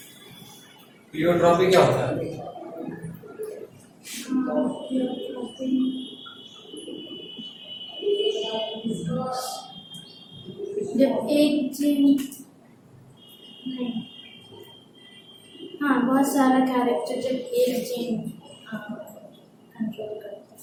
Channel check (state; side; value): identical; both; correlation 1.00